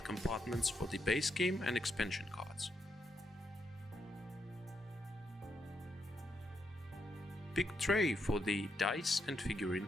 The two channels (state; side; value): normal; both; correlation 0.80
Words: compartments for the base game and expansion cards. Big tray for the dice and figurine